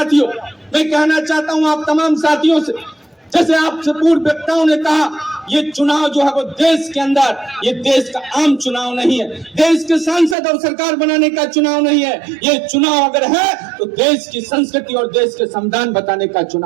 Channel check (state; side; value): drops out; left; at 10.4 s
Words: मैं कहना चाहता हूं आप तमाम साथियों से, जैसे आपसे पूर्व वक्ताओं ने कहा, ये चुनाव जो है वो देश के अंदर, ये देश का आम चुनाव नहीं है, देश के सांसद और सरकार बनाने का चुनाव नहीं है। ये चुनाव अगर है तो देश की संस्कृति और देश के संविधान बताने का